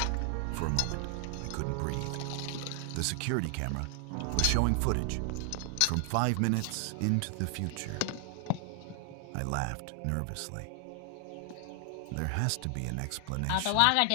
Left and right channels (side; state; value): both; different; correlation 0.00